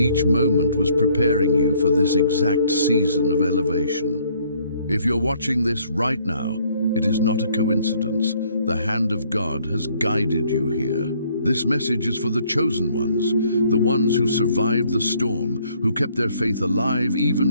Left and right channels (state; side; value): inverted; both; correlation -0.64